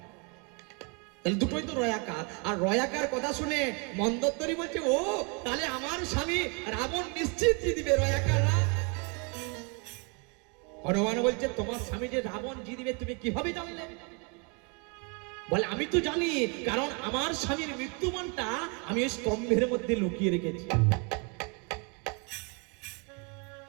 তাহলে দুটোই তো রয়াকার। আর রয়াকার কথা শুনে মন্দোদরি বলছে, ও তাহলে আমার স্বামী রাবণ নিশ্চিত জিতবে, রয়াকার রা। হনুমান বলছে, তোমার স্বামী যে রাবণ জিতবে তুমি কিভাবে জানলে? বলে আমি তো জানি, কারণ আমার স্বামীর মৃত্যুমানটা আমি ওই স্তম্ভের মধ্যে লুকিয়ে রেখেছি।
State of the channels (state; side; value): quieter; left; 33.6 dB